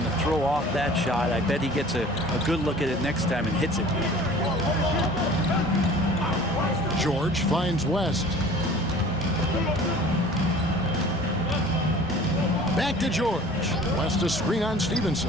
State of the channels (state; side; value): normal; both; correlation 0.46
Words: throw off that shot. I bet he gets a good look at it next time and hits it. George finds West. Back to George. West a screen on